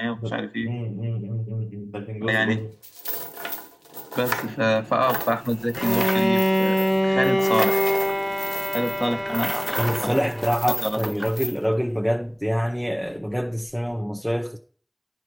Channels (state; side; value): identical; both; correlation 1.00